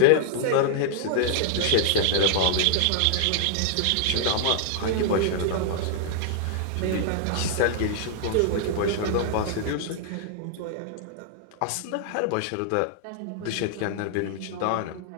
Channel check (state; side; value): different; both; correlation -0.01